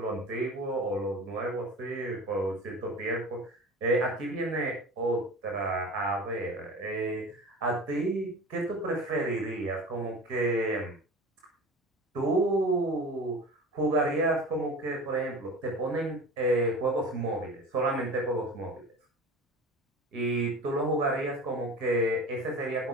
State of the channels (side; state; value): both; normal; correlation 0.35